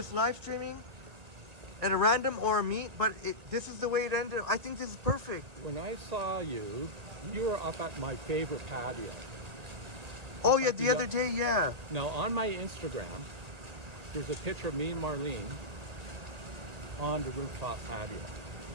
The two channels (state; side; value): late; left; 1.9 ms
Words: live streaming at a random or a meet? But this is the way it ended. I think this is perfect. When I saw you, you were up at my favorite patio. Oh yeah, the other day, yeah. Now on my Instagram, there's a picture of me and Marlene on the rooftop patio.